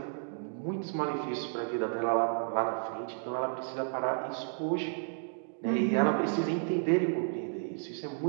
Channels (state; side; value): silent; left; digital silence